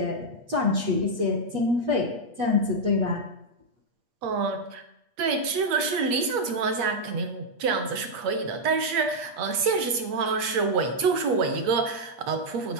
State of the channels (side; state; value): left; late; 8.4 ms